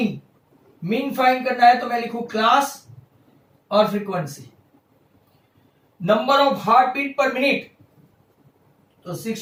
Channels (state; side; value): identical; both; correlation 1.00